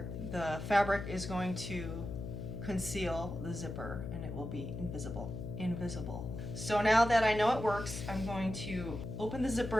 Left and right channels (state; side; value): noise; left; hum, 6 dB below the sound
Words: the fabric is going to conceal the zipper and it will be invisible. So now that I know it works, I'm going to open the